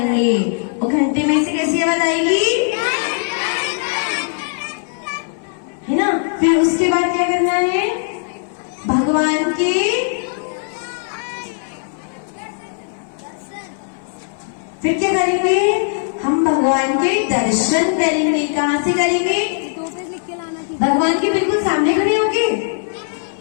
और घंटे में से कैसी आवाज आएगी? है ना। फिर उसके बाद क्या करना है? भगवान के फिर क्या करेंगे? हम भगवान के दर्शन करेंगे। कहाँ से करेंगे? भगवान के बिल्कुल सामने खड़े होंगे?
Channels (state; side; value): silent; right; 66 dB below the other